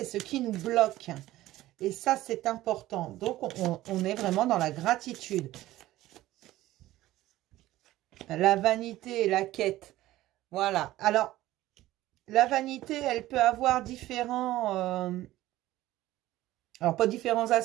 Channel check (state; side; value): quieter; left; 15.8 dB